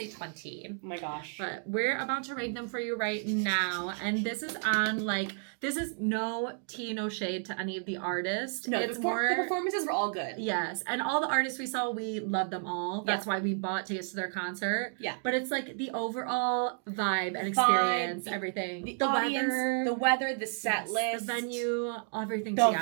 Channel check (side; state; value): left; silent; 57 dB below the other